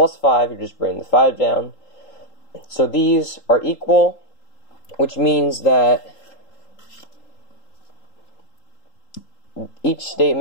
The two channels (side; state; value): right; late; 3.8 ms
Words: 5, you're just bringing the 5 down. So these are equal, which means that each